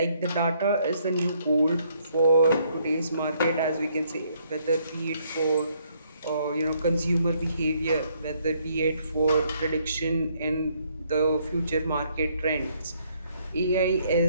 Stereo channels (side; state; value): both; inverted; correlation -0.69